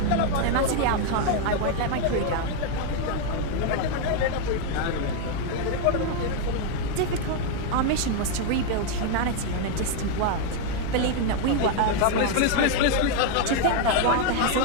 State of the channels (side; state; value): both; different; correlation 0.00